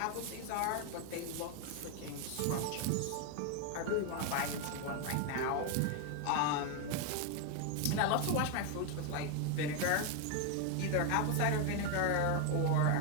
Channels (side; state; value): both; different; correlation 0.01